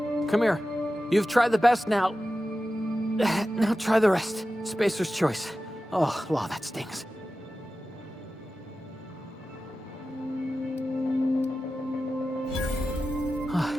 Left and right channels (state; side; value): normal; both; correlation 0.93